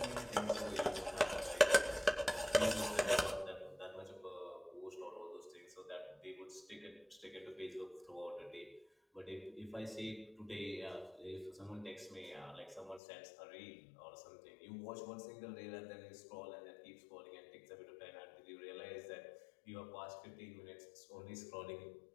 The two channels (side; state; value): right; drops out; at 13.0 s